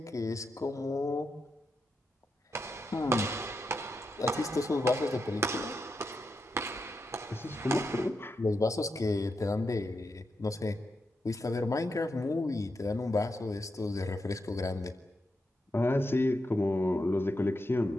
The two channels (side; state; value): both; normal; correlation 0.85